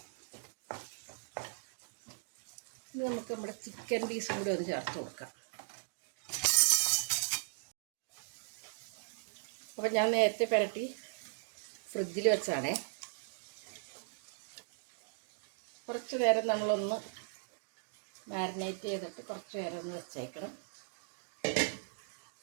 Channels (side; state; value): left; silent; digital silence